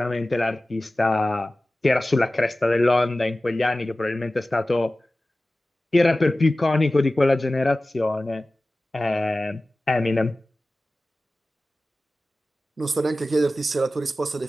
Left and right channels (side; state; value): both; normal; correlation 0.96